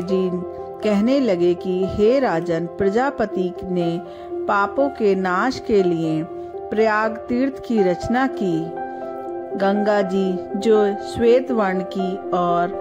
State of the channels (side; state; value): both; identical; correlation 1.00